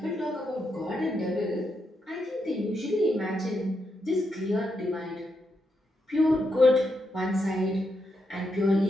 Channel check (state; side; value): normal; both; correlation 0.82